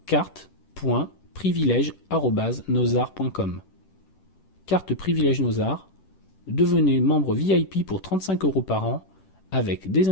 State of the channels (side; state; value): right; late; 10 ms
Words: carte.privilège@nosart.com. Carte privilège Nosart. Devenez membre VIP pour 35 € par an avec des